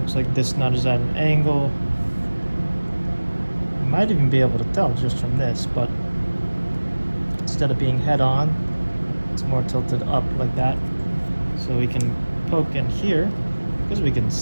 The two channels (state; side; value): inverted; both; correlation -1.00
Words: like this nut is at an angle. You might even be able to tell just from this, but instead of being head on, it's more tilted up like that. So we can poke in here, because we can